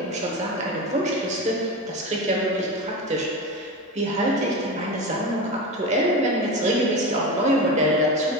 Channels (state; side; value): normal; both; correlation 0.23